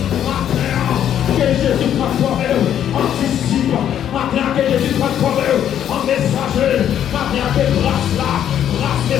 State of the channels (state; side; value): quieter; right; 10.1 dB